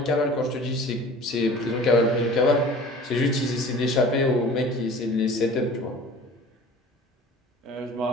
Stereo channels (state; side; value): normal; both; correlation 0.44